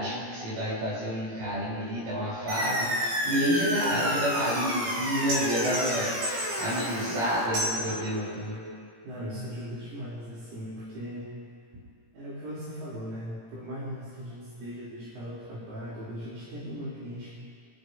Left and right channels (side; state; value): left; late; 18 ms